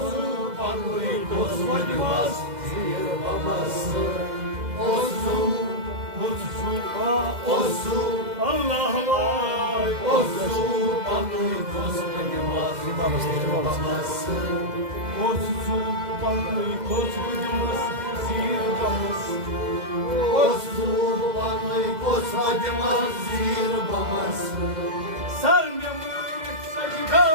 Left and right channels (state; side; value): late; left; 2.0 ms